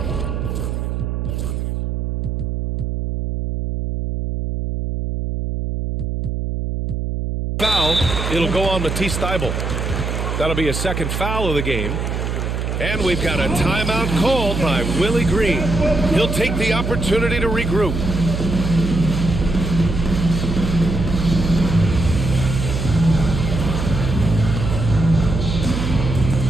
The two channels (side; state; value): right; noise; hum, 2 dB below the sound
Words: foul. It'll go on Matisse Thybulle. That'll be a second foul of the game. And we've got a timeout called by Willie Green. He'll take the opportunity to regroup.